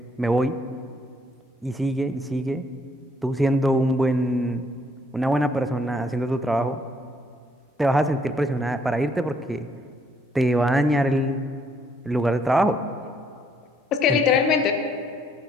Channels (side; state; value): both; normal; correlation 0.68